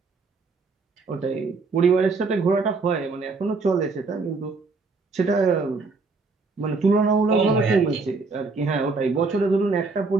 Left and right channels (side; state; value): left; quieter; 4.0 dB